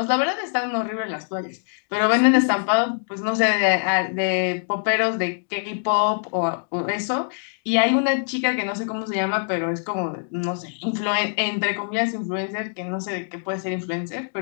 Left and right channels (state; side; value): silent; right; digital silence